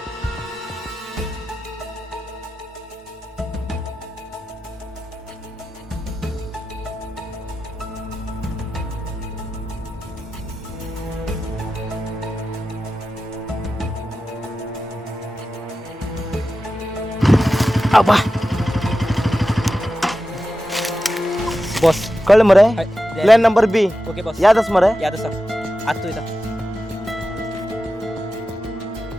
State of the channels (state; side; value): normal; both; correlation 0.92